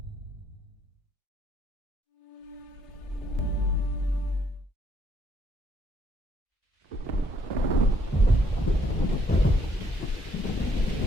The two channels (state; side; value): normal; both; correlation 0.69